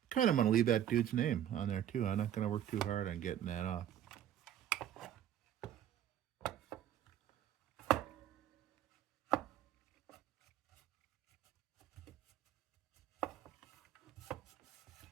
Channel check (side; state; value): left; quieter; 10.8 dB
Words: Kind of want to leave that dude's name on there too. I'm not going to work too hard on getting that off.